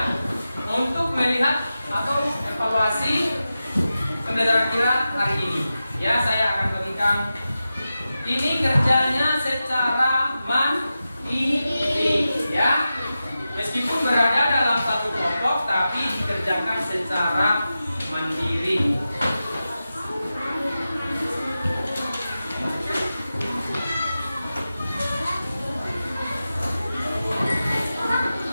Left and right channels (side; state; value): both; inverted; correlation -0.93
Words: untuk melihat atau evaluasi pembelajaran kita hari ini. Ya, saya akan bagikan ini kerjanya secara mandiri ya. Meskipun berada dalam satu kelompok tapi dikerjakan secara mandiri.